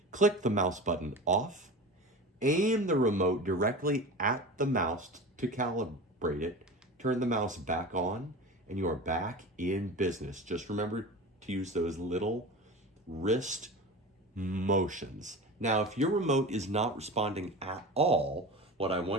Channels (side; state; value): both; normal; correlation 0.31